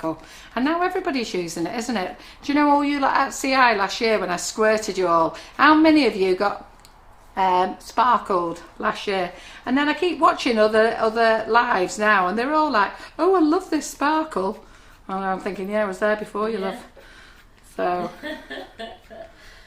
and now everybody's using it, isn't it? Do you know all you lot at CI last year when I squirted you all? How many of you got sparkled last year? And then I keep watching other lives now, and they're all like, "Oh, I love this sparkle." And I'm thinking, yeah, I was there before you, love. So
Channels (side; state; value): both; identical; correlation 1.00